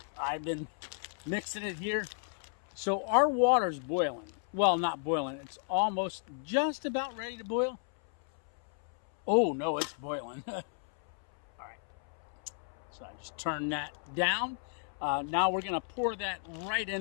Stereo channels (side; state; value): right; silent; 56 dB below the other